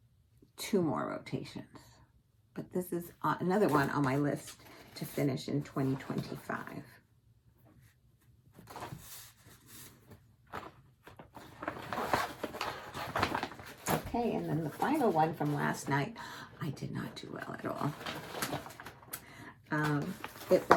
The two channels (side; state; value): both; identical; correlation 1.00